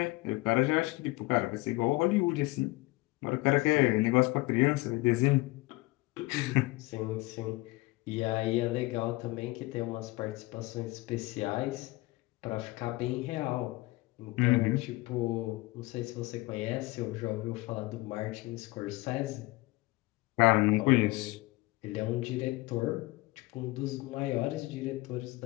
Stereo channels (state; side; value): quieter; right; 21.5 dB